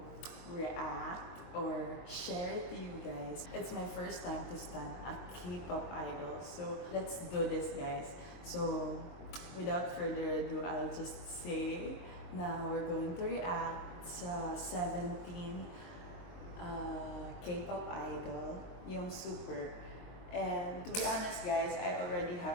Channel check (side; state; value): right; late; 23 ms